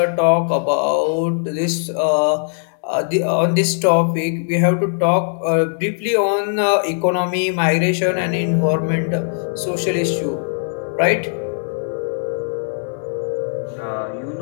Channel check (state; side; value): silent; right; 65 dB below the other